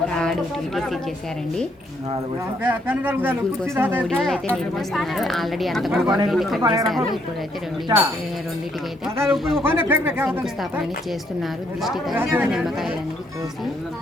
థర్డ్ టీటీసీ చేశారండి. ముగ్గురు కోసం 3 ఇళ్ళు అయితే నిర్మిస్తున్నారు. ఆల్రెడీ అంతకుముందు కట్టేశారు. ఇప్పుడైతే రెండింటికి అయితే శంకుస్థాపన అనేది చేస్తున్నారు. దిష్టి తగలకుండా నిమ్మకాయలు అనేది కోసి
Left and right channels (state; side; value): normal; both; correlation 0.72